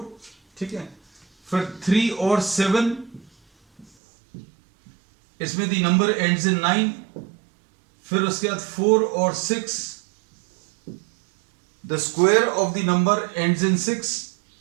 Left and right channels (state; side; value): drops out; left; at 3.9 s